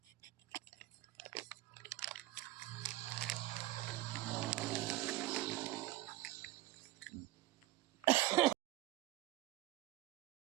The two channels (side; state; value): left; quieter; 17.3 dB